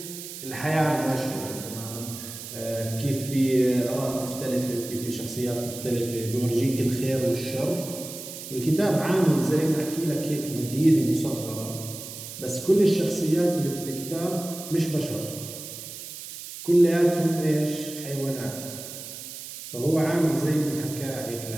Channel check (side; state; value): right; noise; hiss, 11 dB below the sound